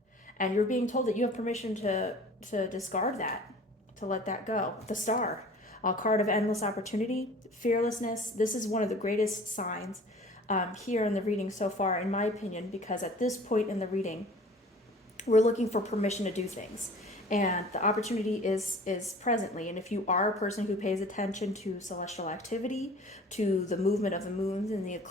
And you're being told that you have permission to discard that, to let that go. The Star, a card of endless opportunity, fearlessness. This is one of the greatest signs here in the reading so far, in my opinion, because at this point in the reading, we're looking for permission to do things. And the opportunity is presently. And if you are a person who pays attention to celestial activity, to the movement of the moons and the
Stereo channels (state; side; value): normal; both; correlation 0.46